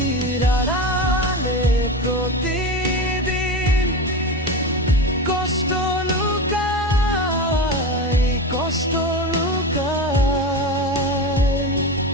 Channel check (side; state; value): both; normal; correlation 0.23